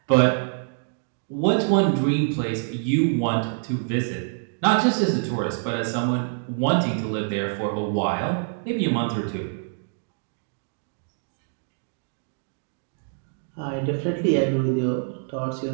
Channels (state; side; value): silent; left; digital silence